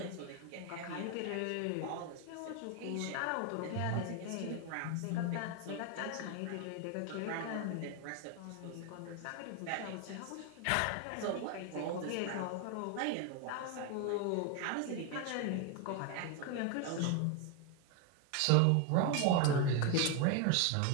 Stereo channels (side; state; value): both; different; correlation 0.01